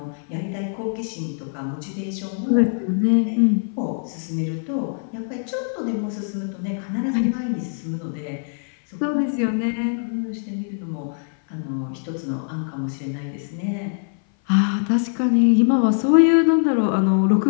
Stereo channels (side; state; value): right; silent; 57 dB below the other